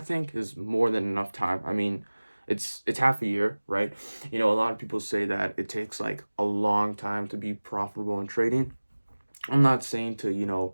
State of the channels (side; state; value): both; inverted; correlation -1.00